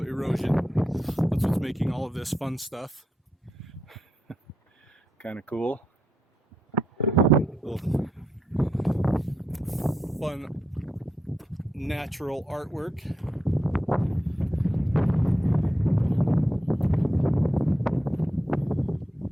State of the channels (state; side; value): normal; both; correlation 0.83